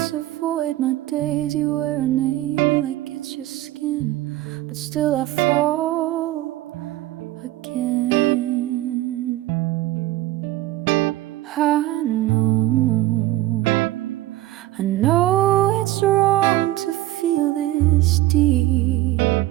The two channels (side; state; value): left; quieter; 16.1 dB